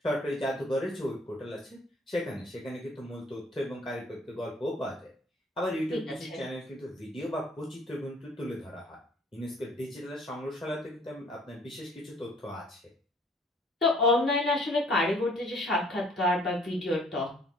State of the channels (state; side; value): normal; both; correlation 0.58